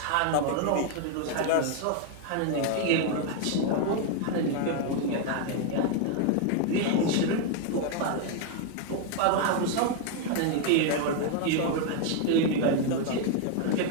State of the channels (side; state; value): both; different; correlation 0.01